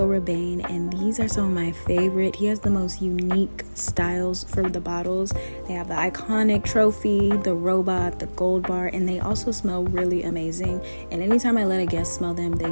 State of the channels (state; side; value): inverted; both; correlation -1.00